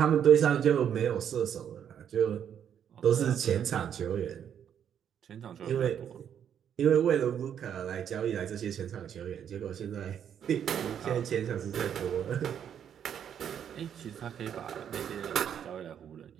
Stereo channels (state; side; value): quieter; left; 8.9 dB